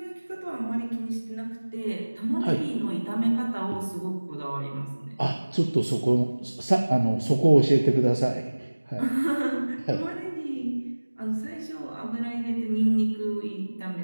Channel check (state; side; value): inverted; both; correlation -1.00